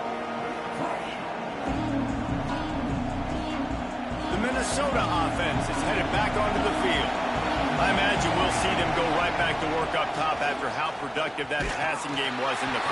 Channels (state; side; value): identical; both; correlation 1.00